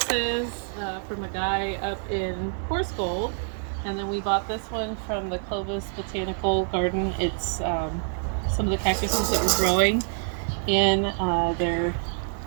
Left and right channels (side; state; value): left; silent; 61 dB below the other